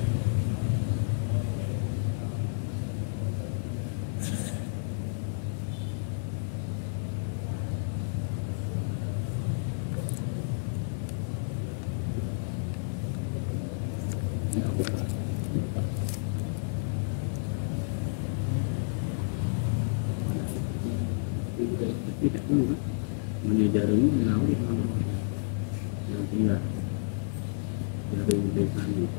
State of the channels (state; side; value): silent; right; digital silence